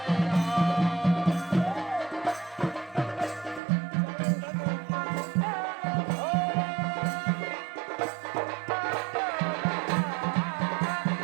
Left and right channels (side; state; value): left; drops out; at 3.6 s